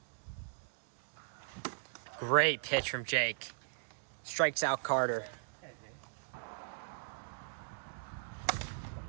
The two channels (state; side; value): silent; left; digital silence